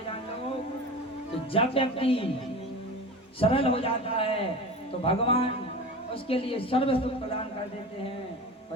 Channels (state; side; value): normal; both; correlation 0.31